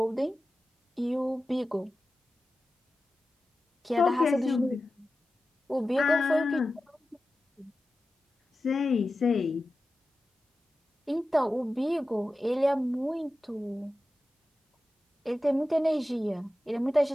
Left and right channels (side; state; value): both; normal; correlation 0.94